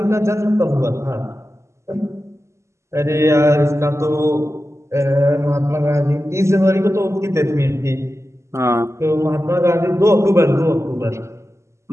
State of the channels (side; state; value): left; late; 0.13 ms